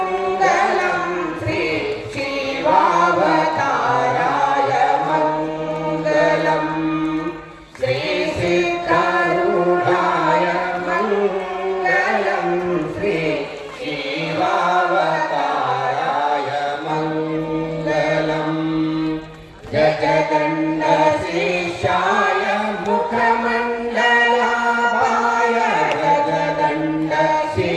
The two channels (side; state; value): both; identical; correlation 1.00